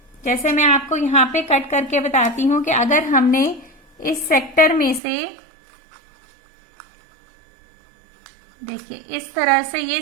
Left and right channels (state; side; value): drops out; left; at 5.0 s